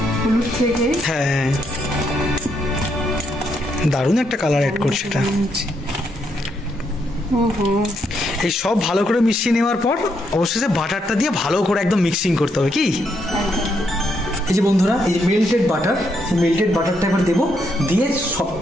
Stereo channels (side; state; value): both; normal; correlation 0.77